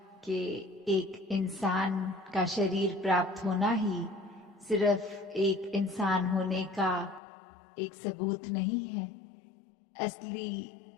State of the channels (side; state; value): right; drops out; at 7.2 s